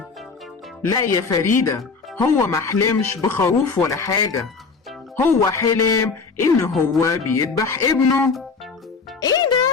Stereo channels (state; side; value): quieter; right; 4.8 dB